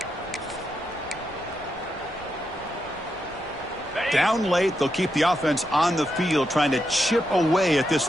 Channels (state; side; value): noise; left; rumble, 23 dB below the sound